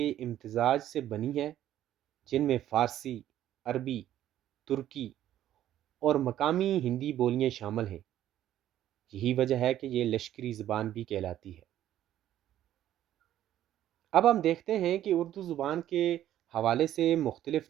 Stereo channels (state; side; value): quieter; left; 12.2 dB